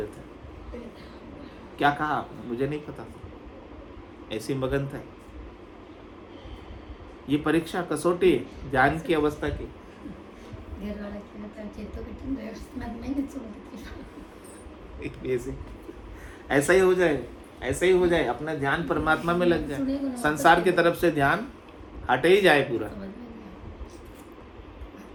क्या कहा आपने? मुझे नहीं पता, ऐसी मगन था। ये परीक्षा कसौटी है ध्यान की अवस्था की। ऐसा ही हो जाए, ऐसा ही हो जाए, अपना ध्यान परमात्मा में लग जाए, संसार की तरफ से ध्यान हटे ही जाए पूरा।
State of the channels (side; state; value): both; identical; correlation 1.00